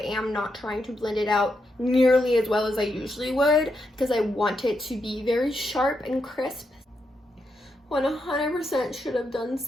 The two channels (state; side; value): normal; both; correlation 0.82